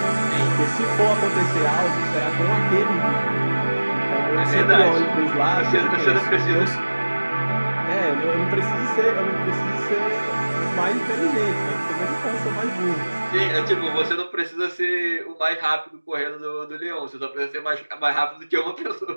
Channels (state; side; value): inverted; both; correlation -1.00